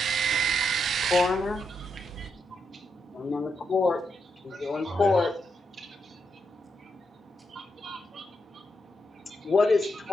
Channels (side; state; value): both; normal; correlation 0.82